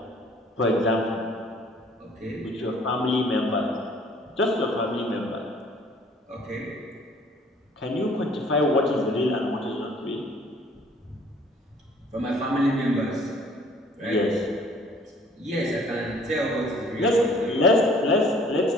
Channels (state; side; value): normal; both; correlation 0.56